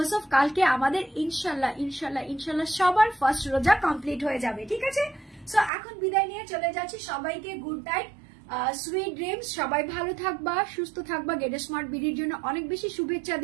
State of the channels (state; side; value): drops out; left; at 5.7 s